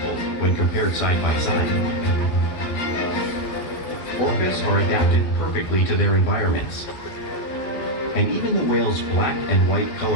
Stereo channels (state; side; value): late; right; 11 ms